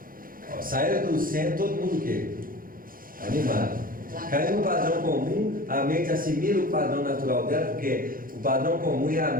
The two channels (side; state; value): left; late; 0.41 ms